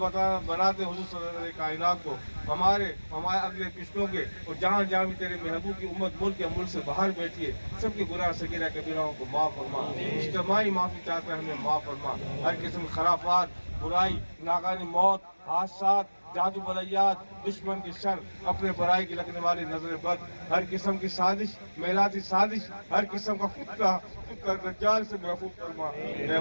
بناتے حضور صدر کائنات کو، ہمارے اگلے پچھلوں کے، اور جہاں جہاں بھی تیرے محبوب کی امت ملک یا ملک سے باہر بیٹھی ہے سب کے گناہ صغیرہ کبیرہ کو معاف فرما، اجتماعی معافی چاہتا ہے ہمیں معاف فرما، ہر قسم کی خرافات، برائی، ناگہانی موت، حادثات، جادو بلیات، دشمن کی شر، اپنے برائی کی لگنے والی نظر بد، ہر قسم کی سازش، میلاتی سازش، ہر قسم کا فتنہ دجال سے محفوظ فرما، اے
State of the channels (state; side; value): inverted; both; correlation -1.00